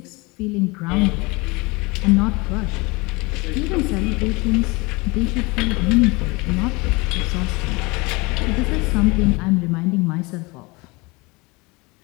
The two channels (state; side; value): quieter; right; 25.7 dB